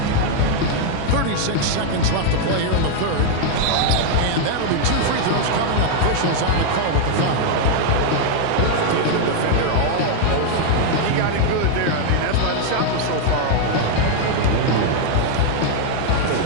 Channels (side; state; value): both; different; correlation 0.00